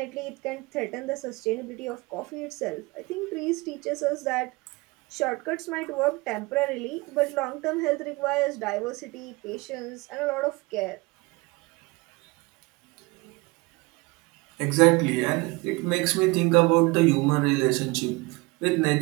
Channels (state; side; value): quieter; left; 24.7 dB